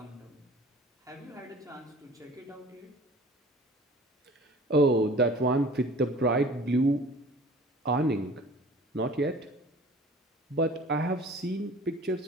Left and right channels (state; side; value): normal; both; correlation 0.46